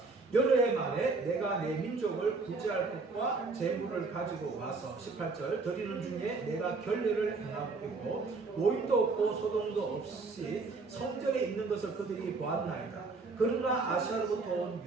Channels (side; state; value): left; quieter; 4.0 dB